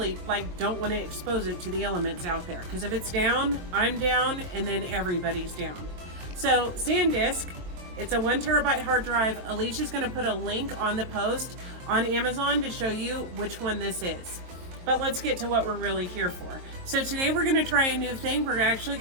don't want to expose it to the elements out there, because if it's down, I'm down, and then everybody's down. So SanDisk, it's a 1 terabyte hard drive. Alicia's gonna put a link on the post on Amazon to show you which one this is. But let's get to what we're really here for. So today we're gonna try a new thing. We're actually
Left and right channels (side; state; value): left; late; 22 ms